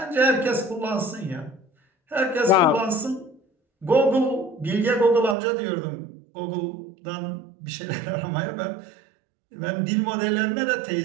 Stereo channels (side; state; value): left; drops out; at 5.4 s